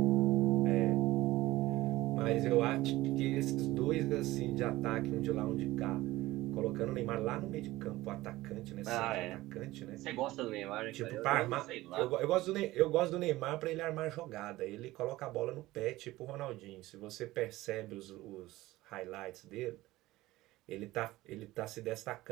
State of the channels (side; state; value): left; quieter; 17.8 dB